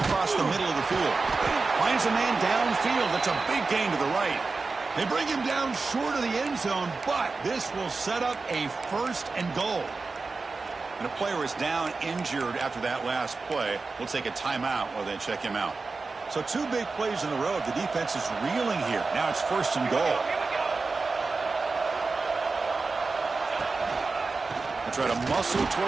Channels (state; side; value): quieter; left; 4.0 dB